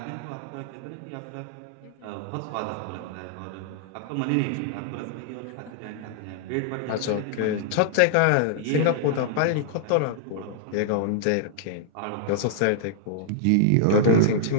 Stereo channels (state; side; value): different; both; correlation -0.01